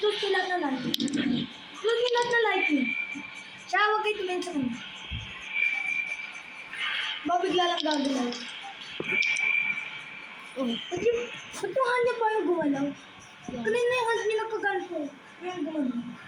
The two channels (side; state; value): both; identical; correlation 1.00